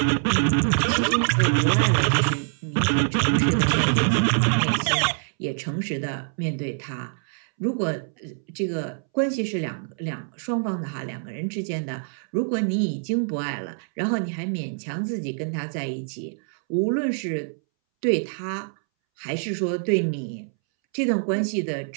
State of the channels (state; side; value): silent; left; 62 dB below the other